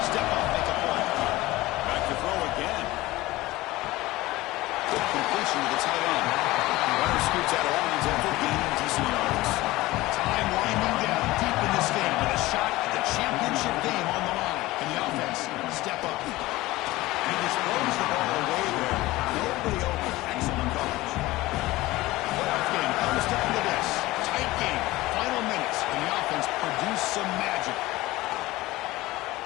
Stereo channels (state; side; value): quieter; right; 18.7 dB